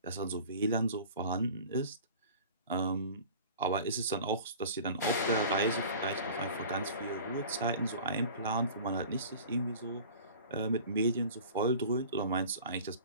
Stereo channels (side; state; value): both; inverted; correlation -0.42